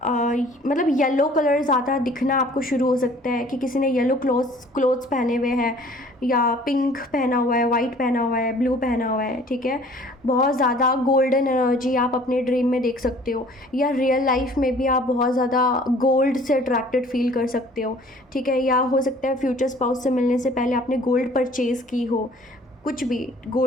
मतलब येलो कलर ज़्यादा दिखना आपको शुरू हो सकता है कि किसी ने येलो क्लोथ्स पहने हुए हैं, या पिंक पहना हुआ है, वाइट पहना हुआ है, ब्लू पहना हुआ है, ठीक है। बहुत ज़्यादा गोल्डन एनर्जी आप अपने ड्रीम में देख सकते हो, या रियल लाइफ में भी आप बहुत ज़्यादा गोल्ड से अट्रैक्टेड फील कर सकते हो, ठीक है। या हो सकता है फ्यूचर स्पाउस से मिलने से पहले आपने गोल्ड परचेज़ की हो, कुछ भी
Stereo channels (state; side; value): normal; both; correlation 0.53